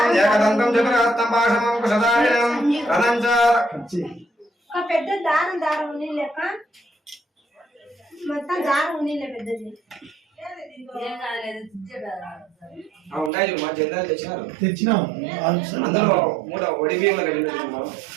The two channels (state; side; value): drops out; left; at 13.3 s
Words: ఏకదంతం చతురహస్తం పాశమం కుశదాయం రథం చ పెద్ద దారం ఉని లెక్క మొత్తం దారం ఉని పెద్దది ఉన్నాయి మా జెండాలు తెచ్చినారు తెచ్చినాము అందరూ మూడ ఒడి బియ్యంలో